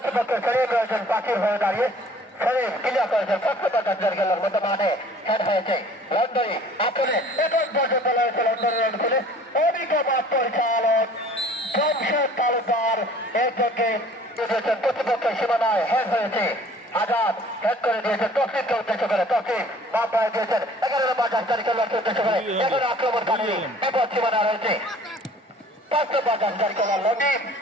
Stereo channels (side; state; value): both; normal; correlation 0.51